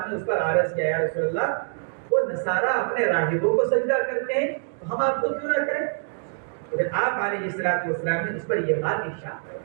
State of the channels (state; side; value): silent; left; digital silence